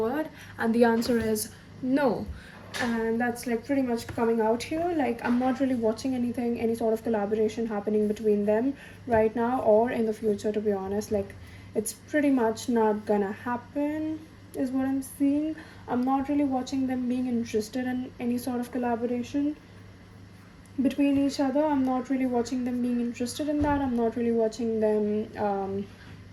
and the answer is no. And that's like pretty much coming out here. Like, I'm not really watching any sort of collaboration happening between them right now or in the future, to be honest. Like, it's pretty much not gonna happen, is what I'm seeing. I'm not really watching them being interested in any sort of collaboration between each other. I'm not really watching them being interested in that. I'm not really watching them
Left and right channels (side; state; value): both; identical; correlation 1.00